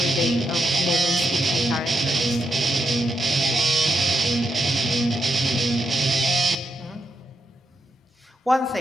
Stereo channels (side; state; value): both; normal; correlation 0.83